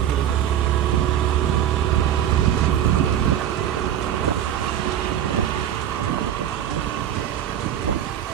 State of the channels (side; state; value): left; quieter; 10.3 dB